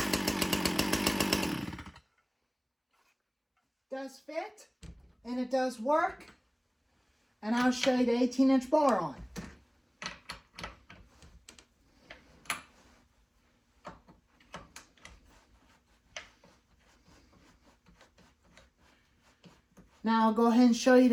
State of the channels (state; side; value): identical; both; correlation 1.00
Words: Does fit, and it does work, and I'll show you the 18-inch bar on. Now I'll go ahead and show you